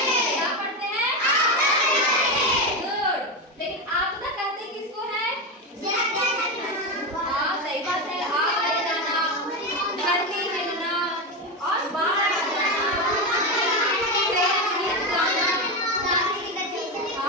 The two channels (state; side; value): normal; both; correlation 0.14